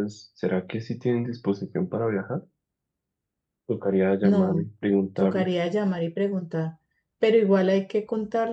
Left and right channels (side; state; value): both; identical; correlation 1.00